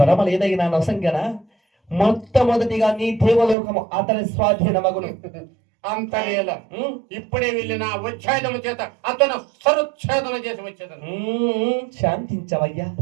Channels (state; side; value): drops out; left; at 3.6 s